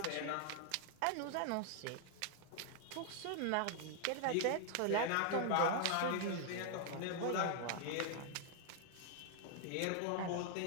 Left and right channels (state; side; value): different; both; correlation 0.00